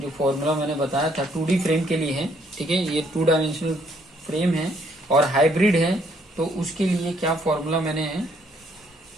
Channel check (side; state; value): both; normal; correlation 0.68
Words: फॉर्मूला मैंने बताया था 2D फ्रेम के लिए है, ठीक है। ये 2 डायमेंशनल फ्रेम है और हाइब्रिड है, तो उसके लिए क्या फॉर्मूला मैंने